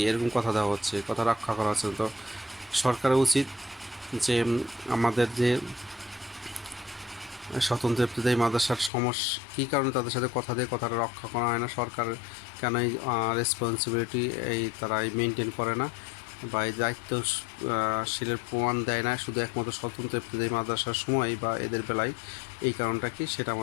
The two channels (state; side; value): drops out; right; at 8.9 s